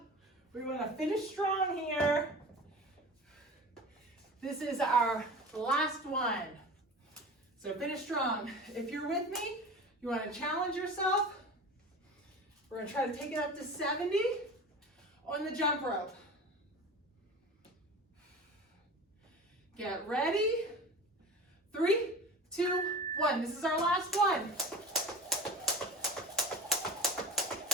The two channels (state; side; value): normal; both; correlation 0.34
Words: We want to finish strong here. This is our last one. So finish strong. If you're with me, you want to challenge yourself. We're going to try to take it up to 70 on the jump rope. Get ready. 3, 2, 1. This is our last one.